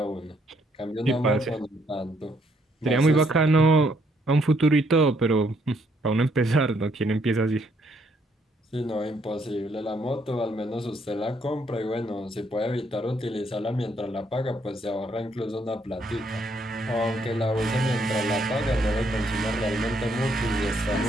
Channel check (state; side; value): normal; both; correlation 0.71